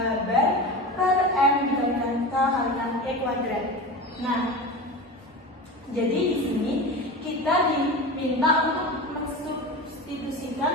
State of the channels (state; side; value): normal; both; correlation 0.29